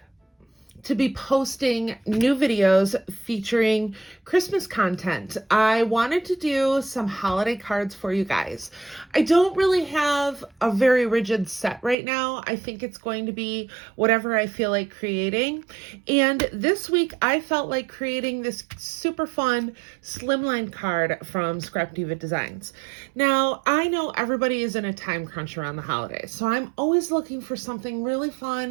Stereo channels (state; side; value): drops out; left; at 12.0 s